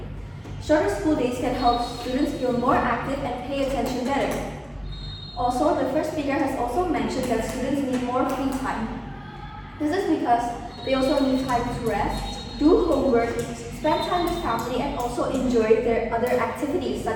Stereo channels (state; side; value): identical; both; correlation 1.00